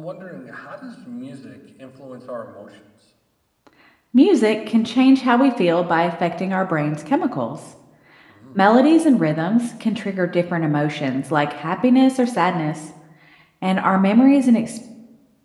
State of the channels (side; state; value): both; identical; correlation 1.00